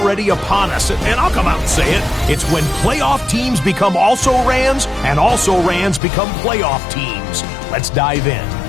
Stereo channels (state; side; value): drops out; right; at 6.0 s